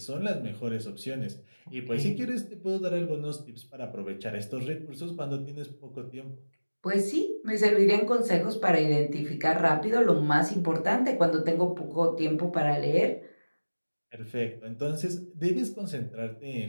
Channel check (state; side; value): inverted; both; correlation -1.00